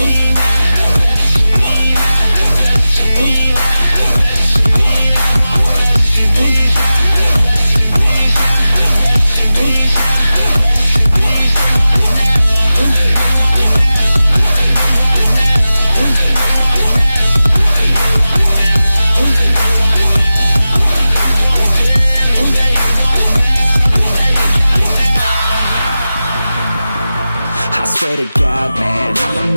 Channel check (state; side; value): inverted; both; correlation -0.94